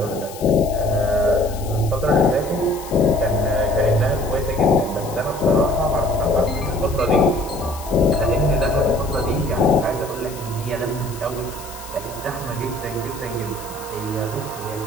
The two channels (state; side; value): noise; left; hiss, 16 dB below the sound